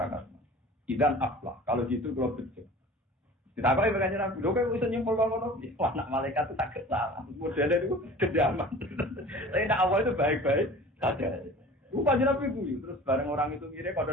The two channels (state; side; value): normal; both; correlation 0.42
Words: kas. Idan aflah. Kalau gitu kalau betul. Ditakoki pengen Nabi, lho kok iso nyimpul ngono. Wah, nak malaikat itu tak salah. Modelnya itu kedaman. Tapi nak awal itu baik-baik saja. Bukan Nabi itu. Terus bareng orang itu ngira